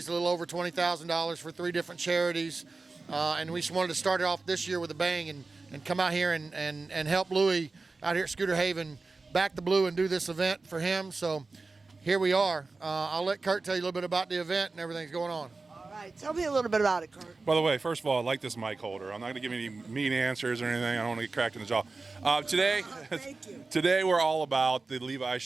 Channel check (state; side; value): quieter; left; 3.8 dB